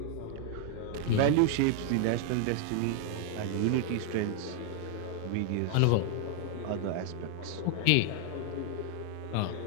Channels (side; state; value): both; different; correlation 0.00